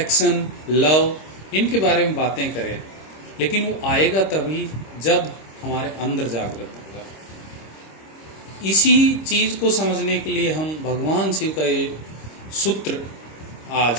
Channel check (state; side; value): late; right; 26 ms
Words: लव, इनके बारे में बातें करें, लेकिन वो आएगा तभी जब हमारे अंदर जागृत होगा। इसी चीज को समझने के लिए हम भगवान शिव का ये सूत्र